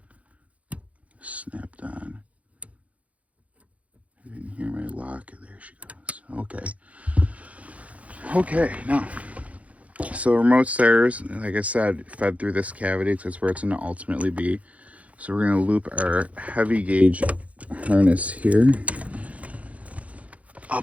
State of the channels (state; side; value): late; left; 0.066 ms